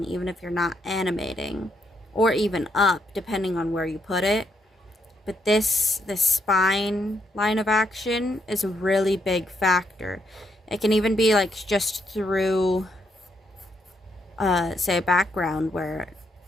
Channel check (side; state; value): both; normal; correlation 0.77